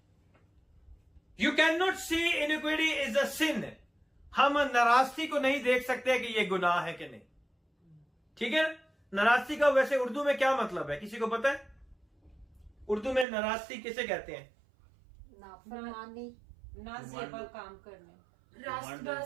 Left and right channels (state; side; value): drops out; left; at 13.2 s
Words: You can not see iniquity is a sin. हम नाराजगी को नहीं देख सकते कि यह गुनाह है कि नहीं. ठीक है? नाराजगी का वैसे उर्दू में क्या मतलब है, किसी को पता है? उर्दू में नाराजगी किसे कहते हैं? नाफरमानी, नाजेबा काम करने.